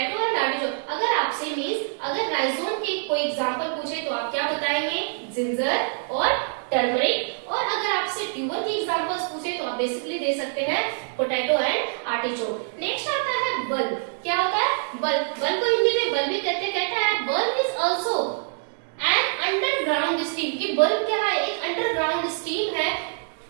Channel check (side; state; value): left; silent; 62 dB below the other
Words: and artichoke. अगर आपसे मीन्स अगर राइजोम के कोई एग्जांपल पूछे तो आप क्या बताएंगे? जिंजर और टर्मरिक। और अगर आपसे ट्यूबर की एग्जांपल्स पूछे तो आप बेसिकली दे सकते हैं पोटैटो एंड आर्टिचोक। नेक्स्ट आता है बल्ब। क्या होता है? बल्ब। बल्ब को हिंदी में बल्ब भी कहते हैं। कहता है bulb is also an underground stem. कि बल्ब क्या है? एक अंडरग्राउंड स्टीम है।